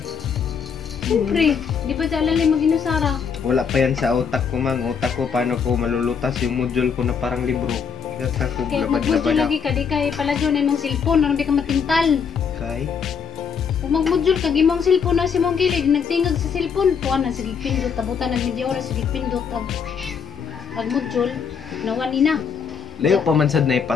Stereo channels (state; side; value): quieter; right; 6.6 dB